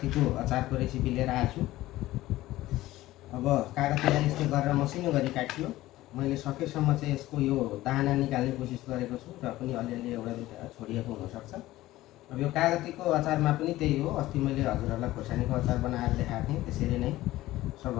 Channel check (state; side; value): quieter; right; 16.5 dB